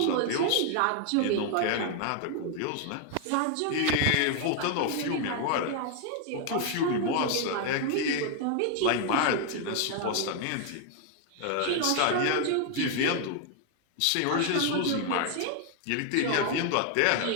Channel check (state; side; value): different; both; correlation 0.00